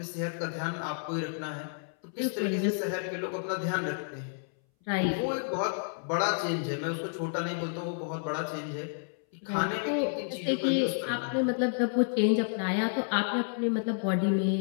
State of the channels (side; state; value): right; silent; 57 dB below the other